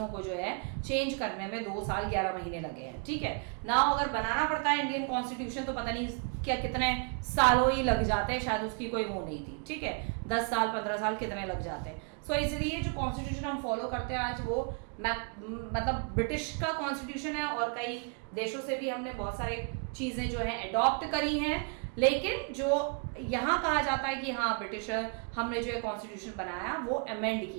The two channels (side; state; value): left; quieter; 39.5 dB